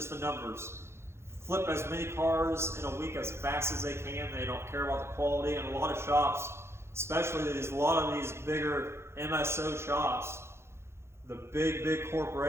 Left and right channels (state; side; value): late; left; 0.12 ms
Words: the numbers. Flip as many cars in a week as fast as they can. They don't care about the quality. And a lot of shops, especially a lot of these bigger MSO shops, the big